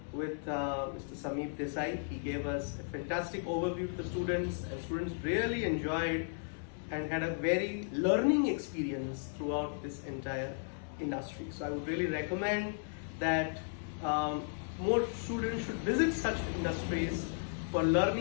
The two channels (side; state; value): right; silent; 54 dB below the other